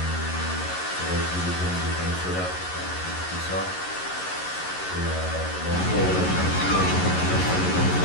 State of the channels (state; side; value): late; right; 11 ms